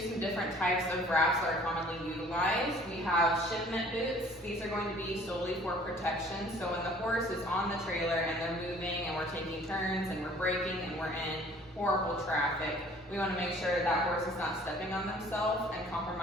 some different types of wraps that are commonly utilized, we have shipment boots. These are going to be solely for protection. So when the horse is on the trailer and they're moving and we're taking turns and we're braking and we're in horrible traffic, we want to make sure that that horse is not stepping on themselves and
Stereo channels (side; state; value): both; normal; correlation 0.53